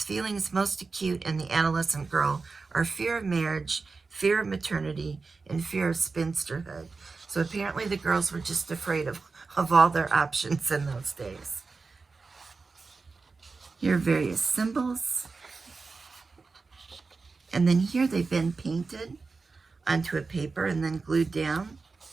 feelings most acute in the adolescent girl are fear of marriage, fear of maternity, and fear of spinsterhood. So apparently the girls were just afraid of all their options in those days. Here are various symbols. And then here they've been painted onto a paper and then glued down.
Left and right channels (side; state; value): left; quieter; 4.3 dB